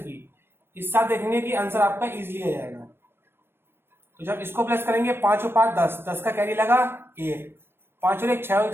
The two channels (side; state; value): left; late; 0.11 ms